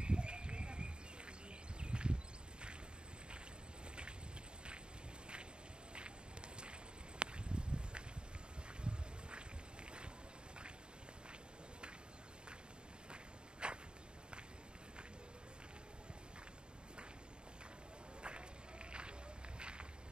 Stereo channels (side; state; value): left; late; 0.050 ms